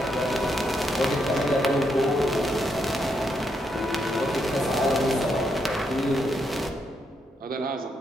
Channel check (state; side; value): normal; both; correlation 0.79